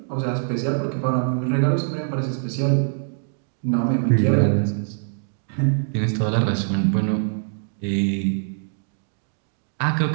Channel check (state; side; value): silent; left; digital silence